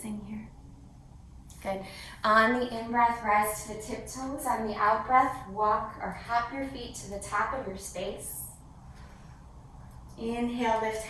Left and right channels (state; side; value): identical; both; correlation 1.00